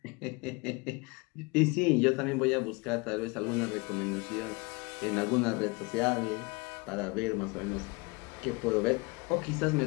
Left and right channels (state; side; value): quieter; right; 27.2 dB